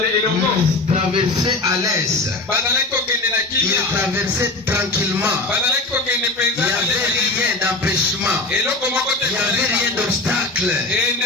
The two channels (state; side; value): quieter; right; 3.0 dB